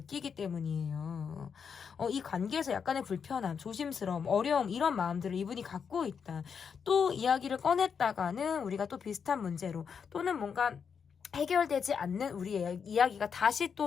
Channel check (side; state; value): right; quieter; 6.6 dB